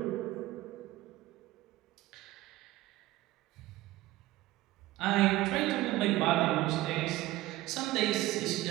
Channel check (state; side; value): quieter; left; 17.2 dB